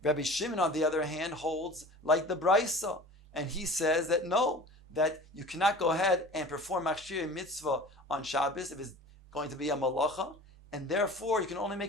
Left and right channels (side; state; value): both; normal; correlation 0.40